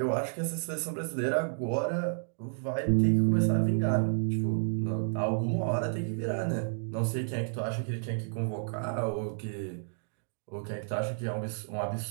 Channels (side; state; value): left; silent; digital silence